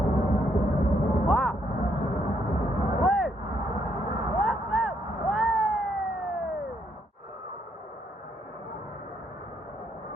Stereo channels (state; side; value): normal; both; correlation 0.73